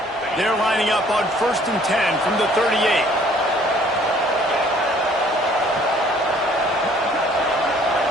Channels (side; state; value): both; normal; correlation 0.58